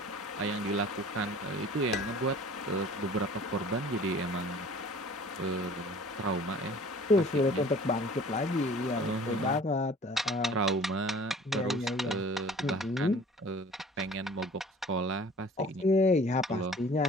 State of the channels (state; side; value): normal; both; correlation 0.48